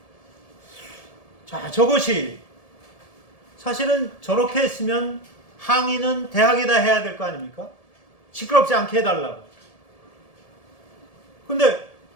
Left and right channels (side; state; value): right; late; 1.7 ms